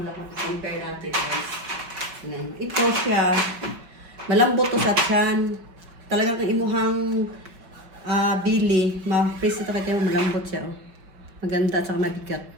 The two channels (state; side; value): late; left; 5.4 ms